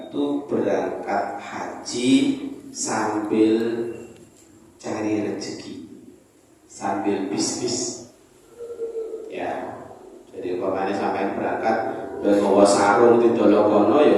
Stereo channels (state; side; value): identical; both; correlation 1.00